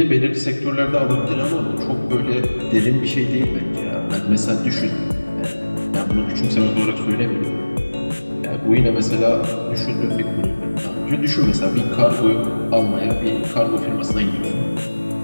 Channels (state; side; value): inverted; both; correlation -1.00